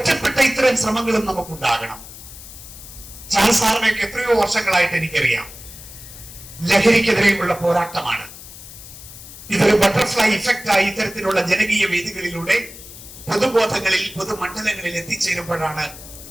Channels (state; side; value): noise; left; hiss, 16 dB below the sound